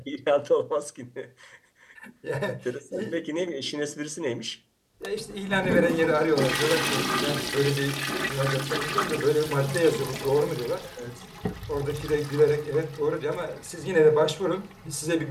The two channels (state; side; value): identical; both; correlation 1.00